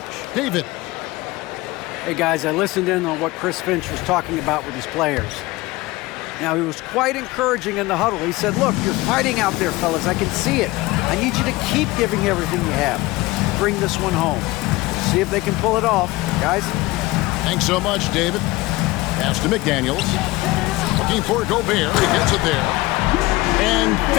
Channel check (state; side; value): quieter; right; 20.2 dB